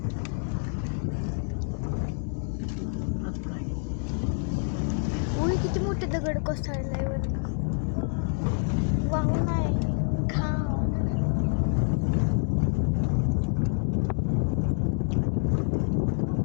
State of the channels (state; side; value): silent; right; 56 dB below the other